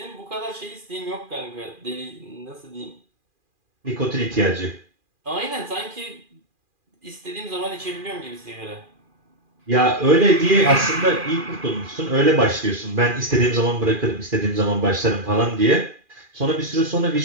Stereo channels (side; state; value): left; late; 2.4 ms